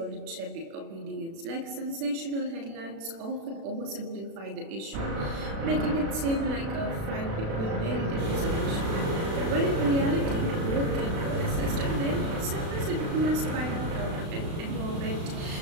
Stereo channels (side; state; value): left; late; 36 ms